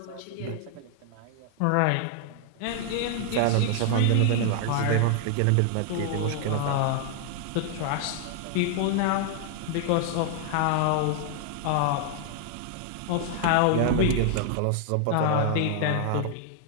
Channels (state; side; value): different; both; correlation 0.00